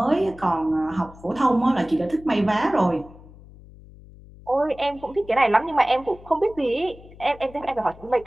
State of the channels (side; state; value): left; noise; hum, 21 dB below the sound